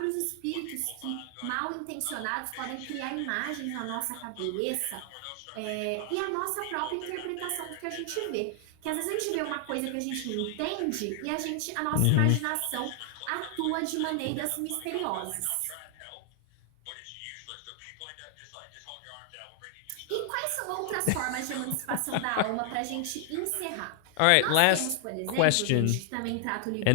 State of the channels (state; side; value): different; both; correlation 0.00